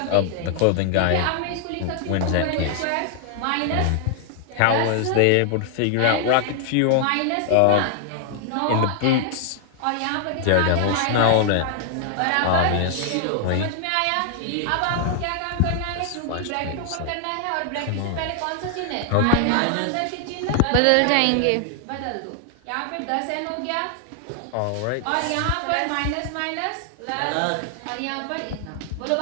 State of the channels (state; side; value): different; both; correlation 0.00